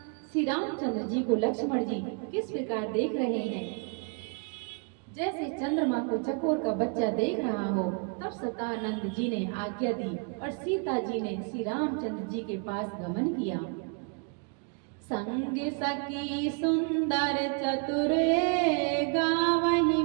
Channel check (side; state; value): left; quieter; 38.2 dB